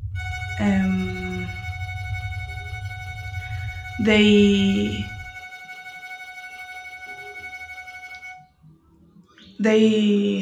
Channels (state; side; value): identical; both; correlation 1.00